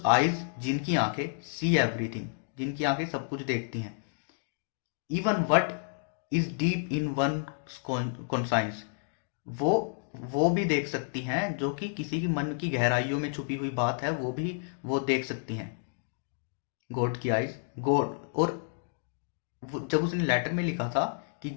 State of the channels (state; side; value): silent; right; digital silence